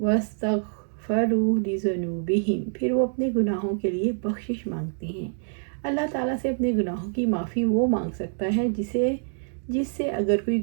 لِذُنُوبِهِمْ، پھر وہ اپنے گناہوں کے لیے بخشش مانگتے ہیں۔ اللہ تعالیٰ سے اپنے گناہوں کی معافی وہ مانگ سکتا ہے جس سے اگر کوئی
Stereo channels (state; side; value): silent; left; digital silence